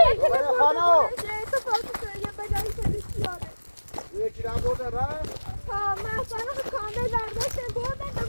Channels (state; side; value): inverted; both; correlation -1.00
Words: یکی را برده رفت؟ ها من اصلا کامل برداشتم بردن تا